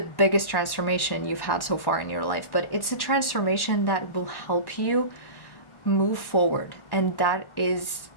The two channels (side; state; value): right; late; 1.1 ms